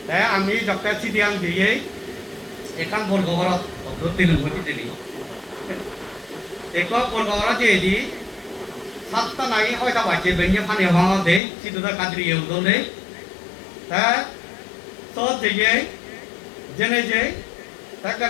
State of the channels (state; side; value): drops out; right; at 11.4 s